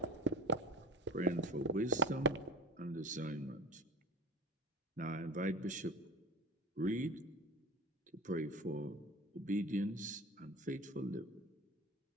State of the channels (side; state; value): both; normal; correlation 0.34